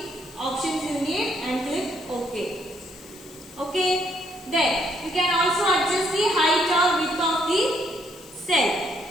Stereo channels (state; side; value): noise; left; hiss, 22 dB below the sound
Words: options you need and click OK. Okay. Then you can also adjust the height or width of the cell.